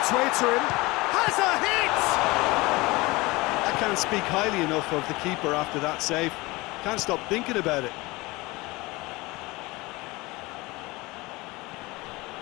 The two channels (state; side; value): quieter; right; 22.4 dB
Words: way to him. Has a hit! I can't speak highly enough of the keeper after that save. Can't stop thinking about it.